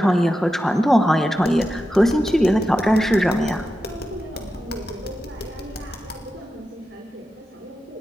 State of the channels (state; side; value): normal; both; correlation 0.90